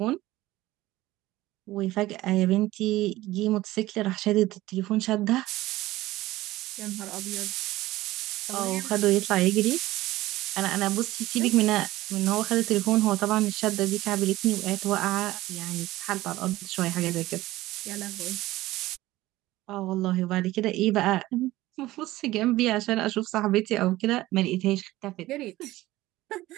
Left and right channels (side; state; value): left; quieter; 17.1 dB